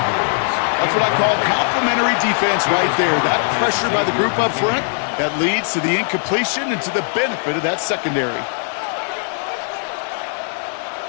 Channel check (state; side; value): silent; right; 63 dB below the other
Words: That's what I call complementary defense right there. That pressure by the group up front, that leads to the incompletion and to the benefit of that secondary.